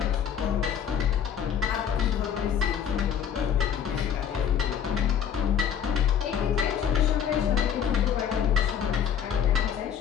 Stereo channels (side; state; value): right; quieter; 8.4 dB